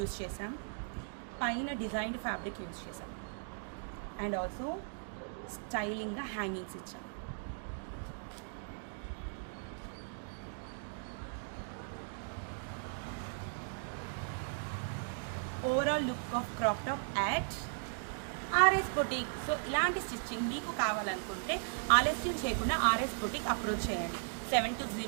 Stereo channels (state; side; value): silent; left; digital silence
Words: చేసాం, పైన డిజైన్డ్ ఫ్యాబ్రిక్ యూజ్ చేసాం అండ్ ఆల్సో స్టైలింగ్గా హ్యాంగింగ్స్ ఇచ్చాం. Overall look of crop top at RS boutique. So ఇలాంటి స్టిచ్చింగ్ మీకు కావాలనుకుంటే ఆలస్యం చేయకుండా ఆర్ఎస్ బొటిక్ అప్రోచ్ చేయండి.